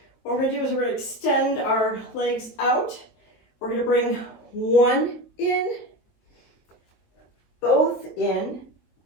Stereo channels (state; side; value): late; right; 23 ms